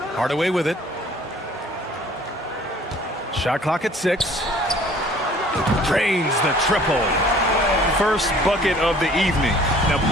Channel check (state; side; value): normal; both; correlation 0.53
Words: Hardaway with it. Shot clock at 6. Drains the triple. First bucket of the evening. Now